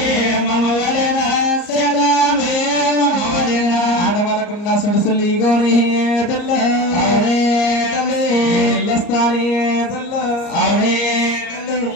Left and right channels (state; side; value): late; right; 34 ms